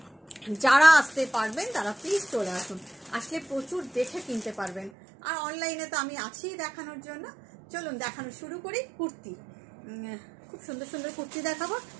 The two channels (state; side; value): drops out; left; at 4.9 s